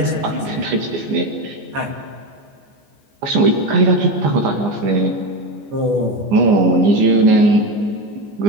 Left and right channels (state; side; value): late; left; 14 ms